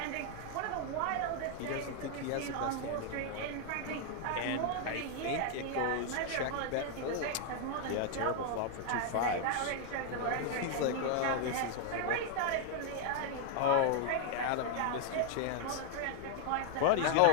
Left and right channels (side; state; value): both; different; correlation 0.00